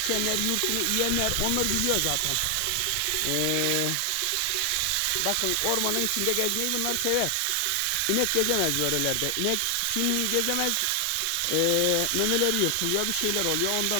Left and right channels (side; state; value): both; different; correlation 0.00